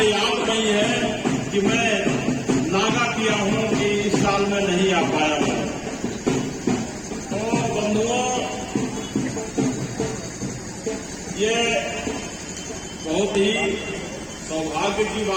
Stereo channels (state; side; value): identical; both; correlation 1.00